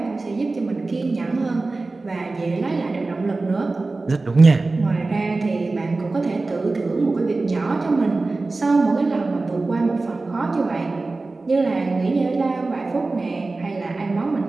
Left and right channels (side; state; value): left; quieter; 3.4 dB